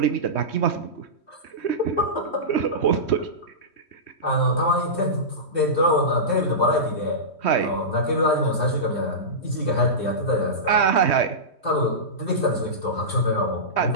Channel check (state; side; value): late; right; 3.2 ms